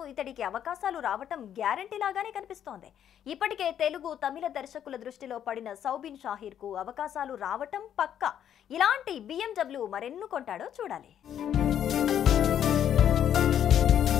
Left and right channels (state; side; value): quieter; right; 9.8 dB